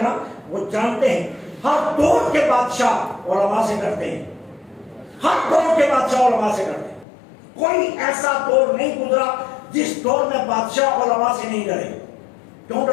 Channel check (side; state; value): right; drops out; at 7.1 s